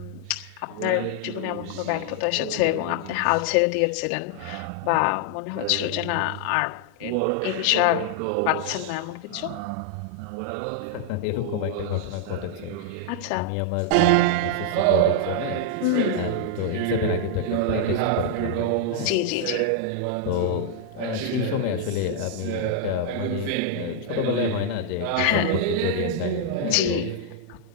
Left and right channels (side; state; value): both; different; correlation 0.00